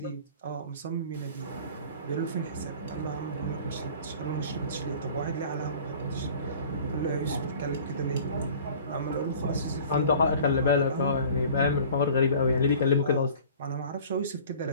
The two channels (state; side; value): inverted; both; correlation -0.46